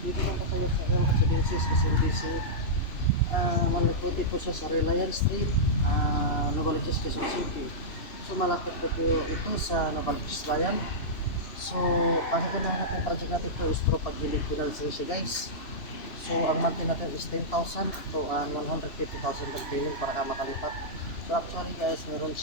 Dito lang po tayo sa L Residences, SMBC. Malapit po siya sa Reliance Street, Novaliches, Quezon City. So malapit po ito sa Novaliches Bayan. So ang ganahan natin project natin ito is through pag-gilid financing siya guys. So ang monthly natin is 10,000 to 150,000 down payment para ka makalipat. So actually guys, meron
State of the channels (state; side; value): late; right; 3.0 ms